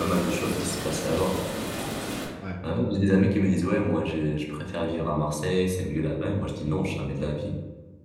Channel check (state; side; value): identical; both; correlation 1.00